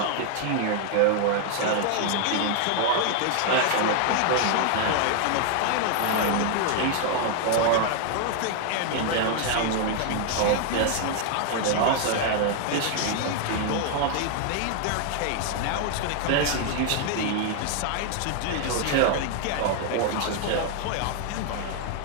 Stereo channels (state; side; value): different; both; correlation 0.00